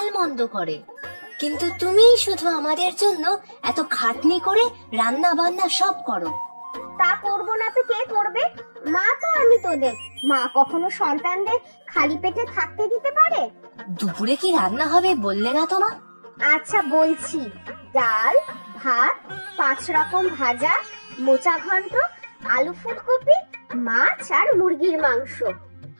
করে, কিন্তু তুমি শুধু আমাদের জন্য এত খাটনি করে রান্না বান্না সব করো। তা করবো না তো কে করবে? মা তো আমি তোদের। মা কখনো সন্তানদের খালি পেটে থাকতে দিতে পারে? দুপুরে কি রান্না হবে বললে না তো মা? আচ্ছা বলছি, ডাল, ভাত, 5 রকম ভাজা, মোচা ঘন্ট, আলু ফুলকপি, মাছ আর মুরগির মাংস।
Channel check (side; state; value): both; inverted; correlation -1.00